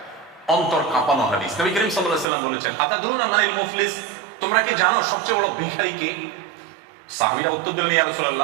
অন্তর কাঁপানো হাদিস। নবী করিম সাল্লাল্লাহু আলাইহি ওয়াসাল্লাম বলেছেন, আতাদরুনা মানিল মুফলিস, তোমরা কি জানো সবচেয়ে বড় ভিখারি কে? সাহাবীরা উত্তর দিলেন, ইয়া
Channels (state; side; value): drops out; left; at 2.2 s